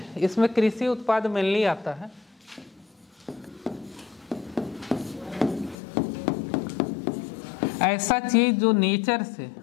इसमें कृषि उत्पाद मेनली आता है। ऐसा चीज जो नेचर से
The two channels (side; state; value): right; drops out; at 5.8 s